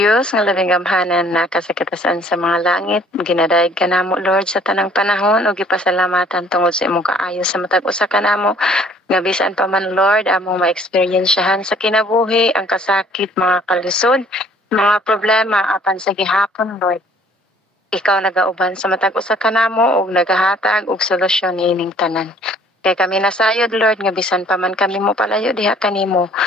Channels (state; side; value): normal; both; correlation 0.57